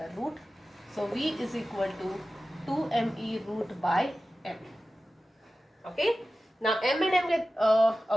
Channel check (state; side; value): normal; both; correlation 0.95